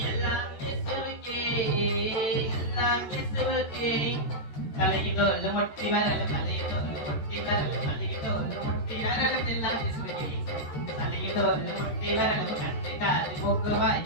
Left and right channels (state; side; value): late; right; 13 ms